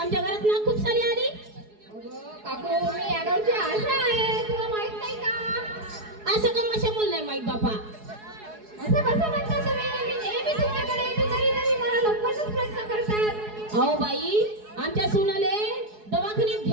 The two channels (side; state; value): left; late; 4.7 ms